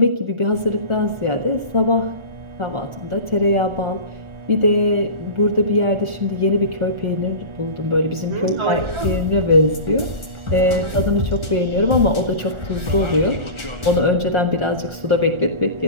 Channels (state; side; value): late; left; 1.4 ms